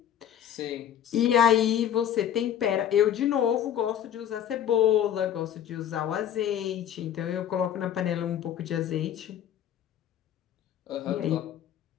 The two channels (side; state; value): right; quieter; 10.1 dB